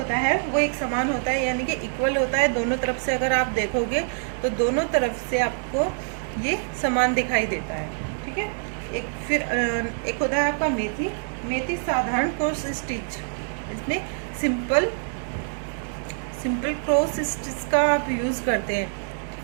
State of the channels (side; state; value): left; silent; digital silence